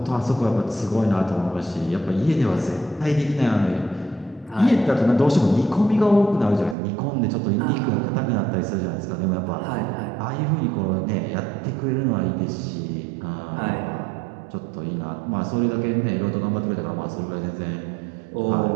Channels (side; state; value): left; drops out; at 6.8 s